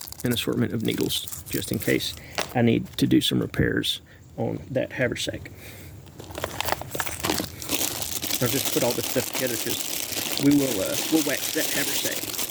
an assortment of needles, just in case I need to do some repairs on that haversack. I'll just put all this stuff together because we'll wax that haversack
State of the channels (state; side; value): identical; both; correlation 1.00